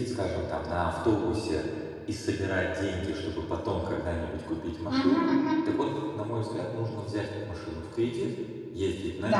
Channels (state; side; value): identical; both; correlation 1.00